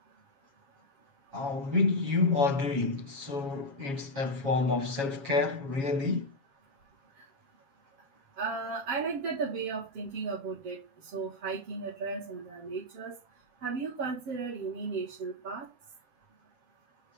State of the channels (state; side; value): late; left; 7.2 ms